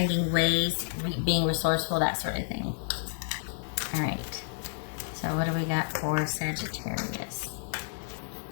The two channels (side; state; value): right; silent; 58 dB below the other